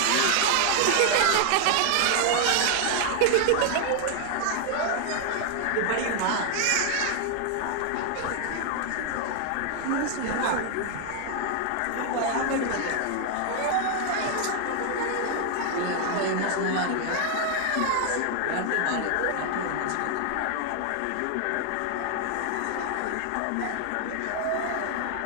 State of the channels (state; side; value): different; both; correlation 0.00